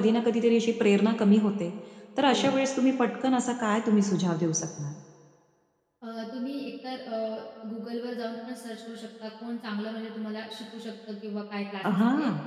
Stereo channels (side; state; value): both; identical; correlation 1.00